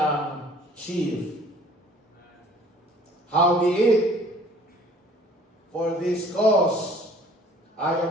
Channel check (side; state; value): both; normal; correlation 0.53